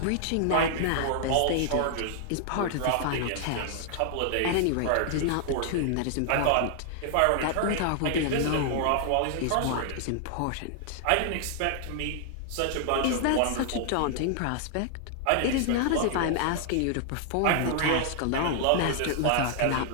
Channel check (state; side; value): different; both; correlation 0.00